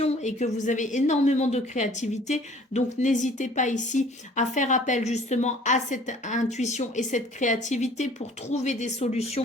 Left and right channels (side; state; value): both; normal; correlation 0.52